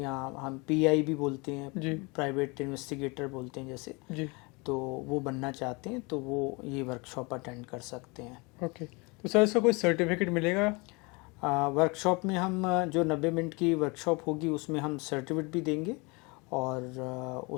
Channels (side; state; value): right; quieter; 27.9 dB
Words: हम पीआई भी बोलते हैं, प्राइवेट इन्वेस्टिगेटर बोलते हैं जैसे, तो वो बनना चाहते हैं तो वो ये वर्कशॉप अटेंड कर सकते हैं। ओके, तो सर इसका कोई सर्टिफिकेट मिलेगा? वर्कशॉप में हम जो 90 मिनट की वर्कशॉप होगी उसमें हम सर्टिफिकेट भी देंगे और